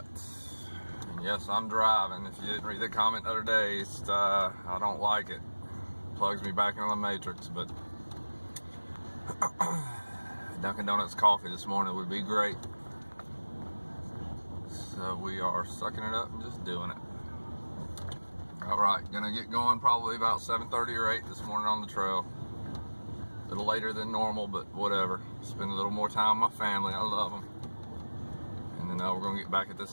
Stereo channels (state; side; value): inverted; both; correlation -1.00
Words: And yes, I'm driving. If you didn't read the comment the other day, I don't like it. Plugs me back into the matrix, but Dunkin' Donuts coffee this morning would be great. So we are sucking it up and just doing it. Alright, gonna get going probably about 7:30 or 8 this morning on the trail. A little later than normal, but whatever. Spend a little more time with my family. I love them. And then we're gonna get back at this